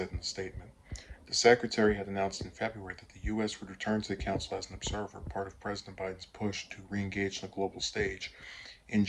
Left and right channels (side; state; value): both; identical; correlation 1.00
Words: in a statement. The secretary had announced in February that the U.S. would return to the council as an observer, part of President Biden's push to re engage on the global stage in